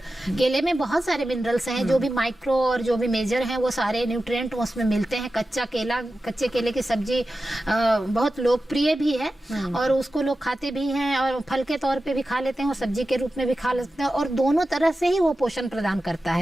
केले में बहुत सारे मिनरल्स हैं, जो भी माइक्रो और जो भी मेजर हैं वो सारे न्यूट्रिएंट उसमें मिलते हैं। कच्चे केले की सब्जी बहुत लोकप्रिय भी है और उसको लोग खाते भी हैं और फल के तौर पे भी खा लेते हैं और सब्जी के रूप में भी खा लेते हैं। और दोनों तरह से ही वो पोषण प्रदान करता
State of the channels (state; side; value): normal; both; correlation 0.93